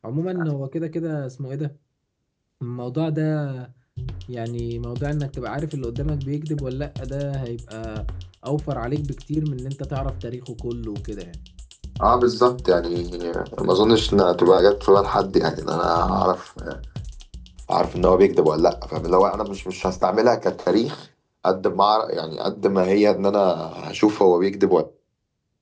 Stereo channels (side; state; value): both; identical; correlation 1.00